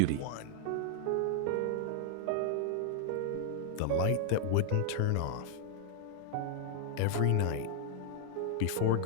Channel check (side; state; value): both; different; correlation -0.01